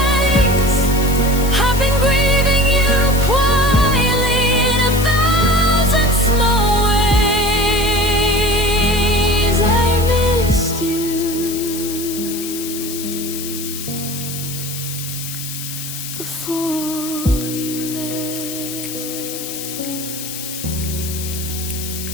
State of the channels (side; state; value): left; noise; hiss, 8 dB below the sound